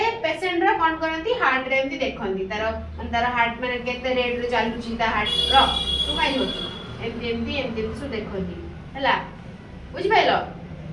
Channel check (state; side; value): identical; both; correlation 1.00